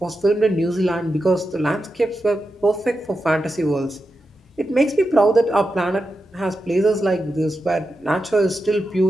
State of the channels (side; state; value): both; normal; correlation 0.89